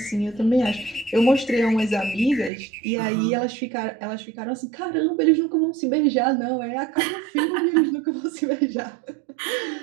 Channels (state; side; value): drops out; left; at 2.5 s